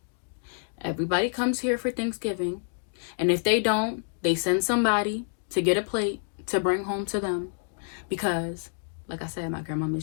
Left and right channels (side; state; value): right; silent; digital silence